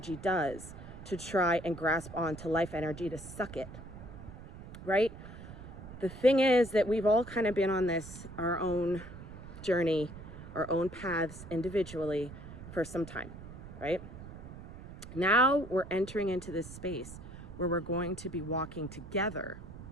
does to try and grasp on to life energy, to suck it, right? The thing is that we've all kind of been on our own journey, our own paths individually for some time, right? Now we're entering into this space where we're going to be walking together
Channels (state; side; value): noise; right; rumble, 14 dB below the sound